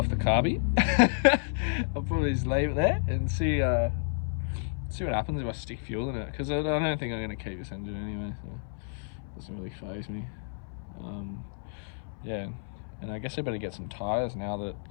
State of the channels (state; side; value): silent; right; 58 dB below the other